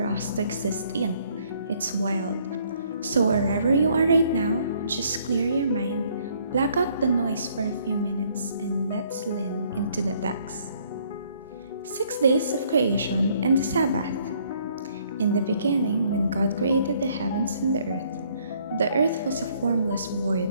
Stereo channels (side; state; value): both; inverted; correlation -0.64